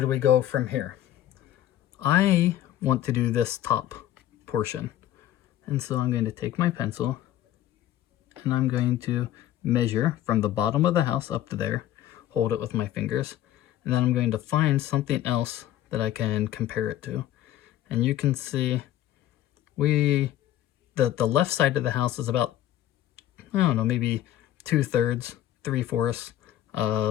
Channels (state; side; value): quieter; right; 12.7 dB